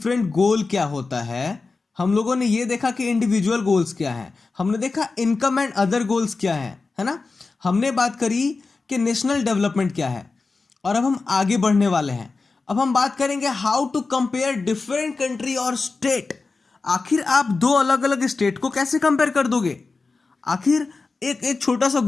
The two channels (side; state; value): right; quieter; 4.0 dB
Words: गोल क्या होता है। हम लोगों ने ये देखा कि इंडिविजुअल गोल्स क्या है, हमने देखा इनकम एंड अदर गोल्स क्या है ना। हमने बात करी कि नेशनल डेवलपमेंट क्या है और अब हम आगे बढ़ने वाले हैं। अब हम बात करेंगे how to compare different country और स्टेट। आखिर आप दो अलग अलग स्टेट को कैसे कंपेयर कर दोगे? आखिर एक एक छोटा सा